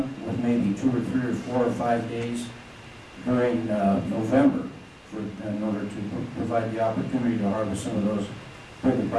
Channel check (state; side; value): identical; both; correlation 1.00